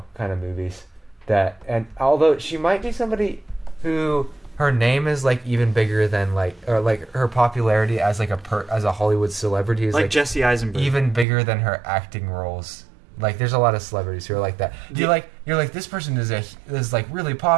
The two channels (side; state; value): left; drops out; at 11.2 s